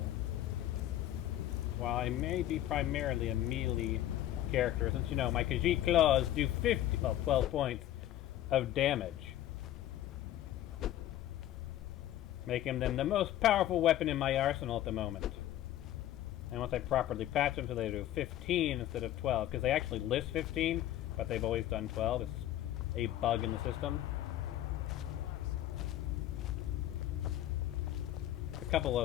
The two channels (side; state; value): right; quieter; 13.1 dB